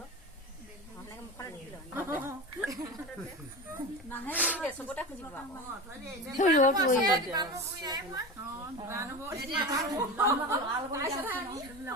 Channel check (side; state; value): both; normal; correlation 0.27